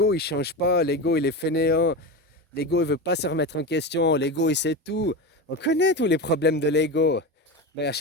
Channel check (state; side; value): normal; both; correlation 0.22